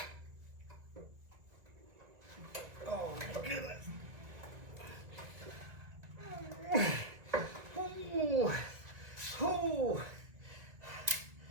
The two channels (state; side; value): late; left; 2.0 ms